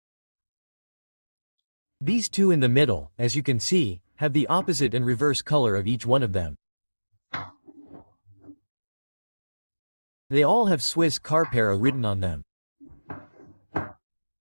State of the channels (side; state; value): both; inverted; correlation -1.00